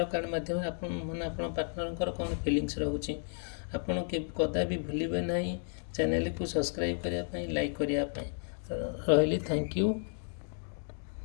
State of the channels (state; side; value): silent; right; 56 dB below the other